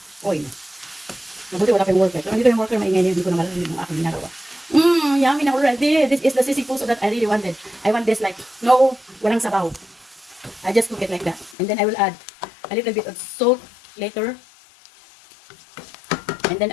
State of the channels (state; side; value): drops out; right; at 11.6 s